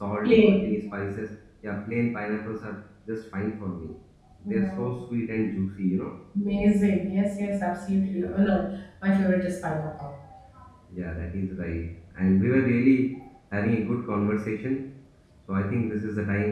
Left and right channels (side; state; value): both; identical; correlation 1.00